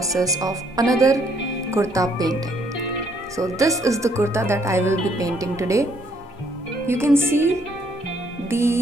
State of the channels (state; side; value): normal; both; correlation 0.68